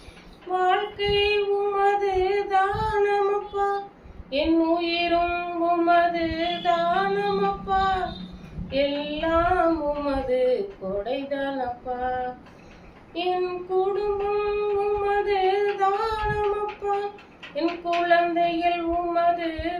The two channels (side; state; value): both; identical; correlation 1.00